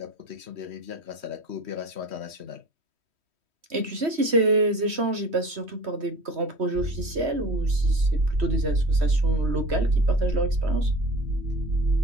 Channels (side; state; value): left; late; 3.1 ms